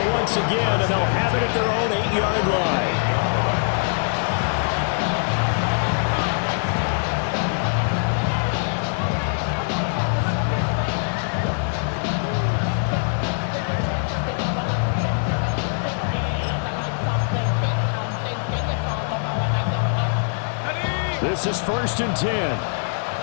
once again, and they'll have it at their own 8-yard line. This is 1st and 10.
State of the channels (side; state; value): right; silent; digital silence